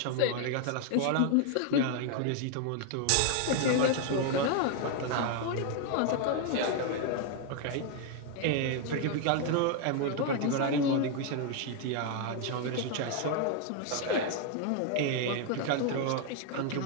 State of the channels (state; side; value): different; both; correlation 0.00